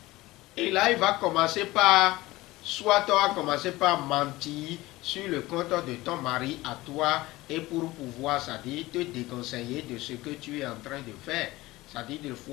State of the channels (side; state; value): right; quieter; 19.0 dB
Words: Et là, il va commencer par, soit tu vas commencer par mentir sur le compte de ton mari à toi, et pour pouvoir, ça dit, te déconseiller de ce que tu es en train de faire, ça dit, le